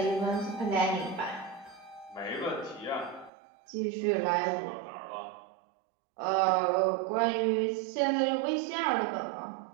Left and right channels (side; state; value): left; drops out; at 3.3 s